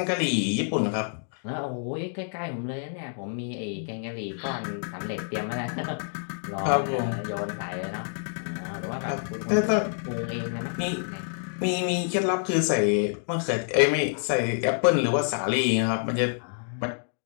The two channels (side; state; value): right; silent; digital silence